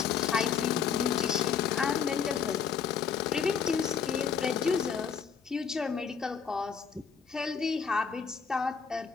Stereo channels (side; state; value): right; quieter; 6.9 dB